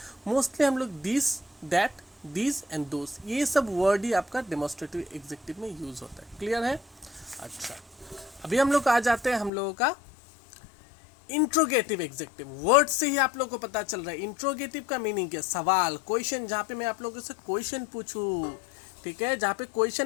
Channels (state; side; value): drops out; right; at 9.5 s